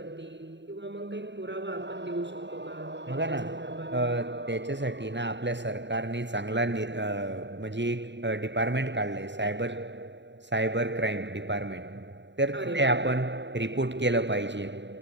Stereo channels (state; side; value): late; left; 0.52 ms